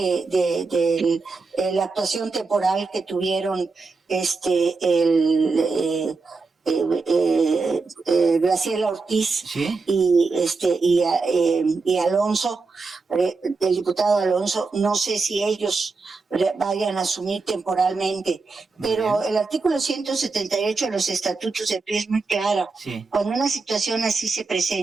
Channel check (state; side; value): quieter; left; 4.1 dB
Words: la actuación temporal que tuvieron Graciela Ortiz, ¿Sí? y Alonso, el diputado Alonso, no sé si ellos vayan a asumir temporalmente, pero el artículo 178 de los estatutos del PRI es muy claro. Sí. Cuando una situación así se